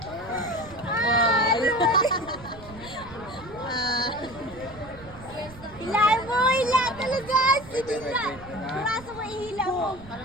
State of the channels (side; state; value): right; noise; rumble, 18 dB below the sound